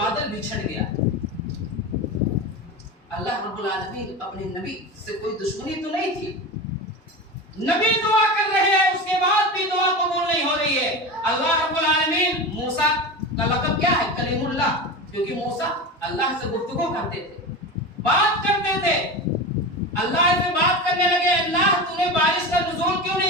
بچھڑ گیا. اللہ رب العالمین اپنے نبی سے کوئی دشمنی تو نہیں تھی. نبی دعا کر رہے ہیں، اس کے بعد بھی دعا قبول نہیں ہو رہی ہے. اللہ رب العالمین موسیٰ کا لقب کیا ہے؟ کلیم اللہ، کیونکہ موسیٰ اللہ سے گفتگو کرتے تھے، بات کرتے تھے. اللہ سے بات کرنے لگے، اللہ تو نے بارش کا نزول کیوں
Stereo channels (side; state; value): both; normal; correlation 0.25